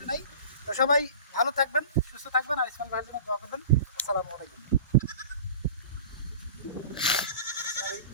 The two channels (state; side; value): inverted; both; correlation -0.40